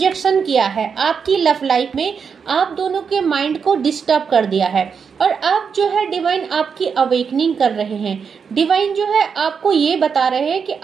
किया है आपकी लव लाइफ में, आप दोनों के माइंड को डिस्टर्ब कर दिया है। और अब जो है डिवाइन आपकी अवेकनिंग कर रहे हैं। डिवाइन जो है आपको ये बता रहे हैं कि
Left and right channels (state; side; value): quieter; left; 6.3 dB